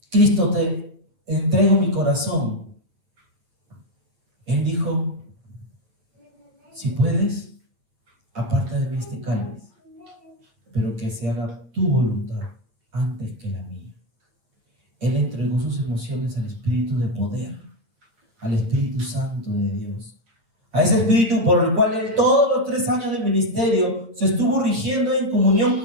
Cristo, te entrego mi corazón. Él dijo: si puedes, aparta de mí este cáliz, pero que se haga tu voluntad antes que la mía. Él entregó sus emociones al Espíritu de poder, al Espíritu Santo de Dios, a ese Espíritu por el cual él todos los 3 años de ministerio se estuvo rigiendo en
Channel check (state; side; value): late; left; 8.7 ms